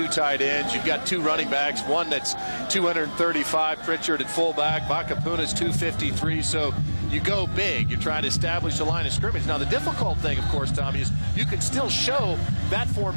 tight ends. You've got 2 running backs, one that's 235, Pritchard at fullback. Vakapuna's 253, so you go big. You're trying to establish a line of scrimmage. Now, the difficult thing, of course, Tommy, is you can still show that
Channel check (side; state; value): both; inverted; correlation -1.00